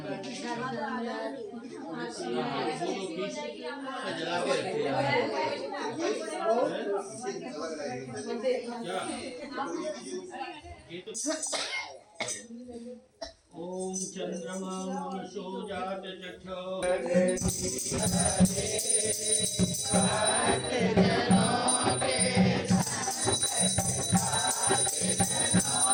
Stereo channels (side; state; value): both; identical; correlation 1.00